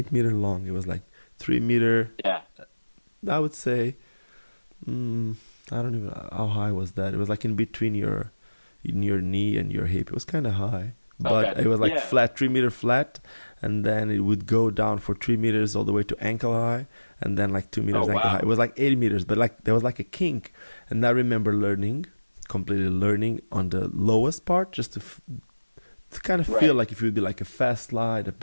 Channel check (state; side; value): inverted; both; correlation -1.00